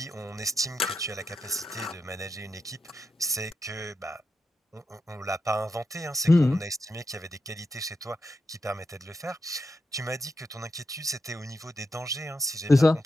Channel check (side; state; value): both; normal; correlation 0.86